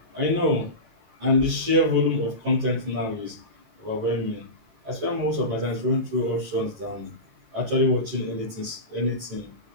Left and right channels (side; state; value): left; late; 18 ms